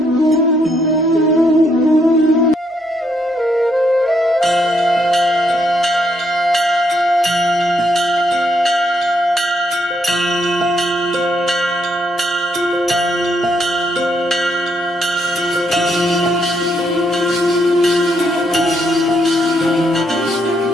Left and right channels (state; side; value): normal; both; correlation 0.74